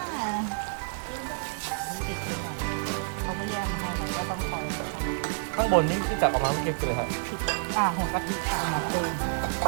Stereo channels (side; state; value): left; silent; digital silence